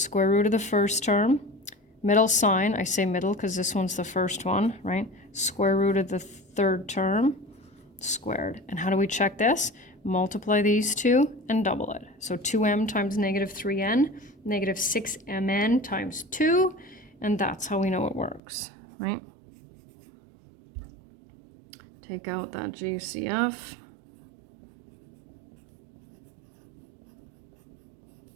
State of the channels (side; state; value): left; drops out; at 18.4 s